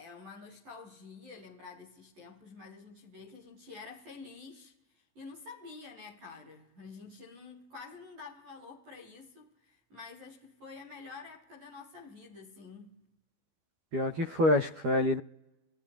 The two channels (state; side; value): late; left; 12 ms